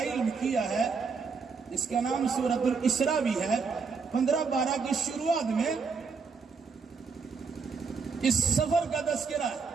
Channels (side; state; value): left; quieter; 5.1 dB